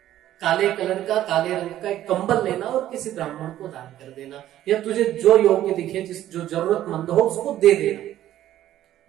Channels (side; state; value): left; quieter; 12.9 dB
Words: काले कलर का, काले रंग का एक कंबल लेना और किसी ब्राह्मण को दान कर देना, या तुझे जो योग्य दिखे, जो जरूरतमंद हो उसको दे देना।